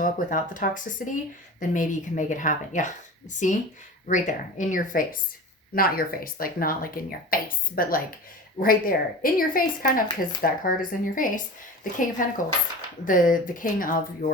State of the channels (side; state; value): both; normal; correlation 0.33